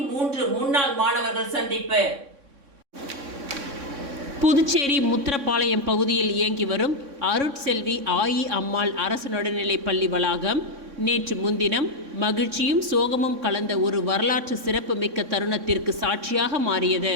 முன்னாள் மாணவர்கள் சந்திப்பு. புதுச்சேரி முத்திரப்பாளையம் பகுதியில் இயங்கி வரும் அருட்செல்வி ஆயி அம்மாள் அரசு நடுநிலைப் பள்ளி வளாகம் நேற்று முன்தினம் மகிழ்ச்சியும் சோகமும் கலந்த ஒரு வரலாற்று சிறப்பு மிக்க தருணத்திற்கு சாட்சியாக மாறியது.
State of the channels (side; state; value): left; late; 3.6 ms